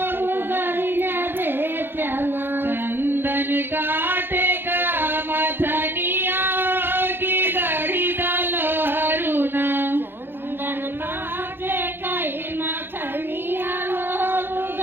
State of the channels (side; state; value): left; late; 0.10 ms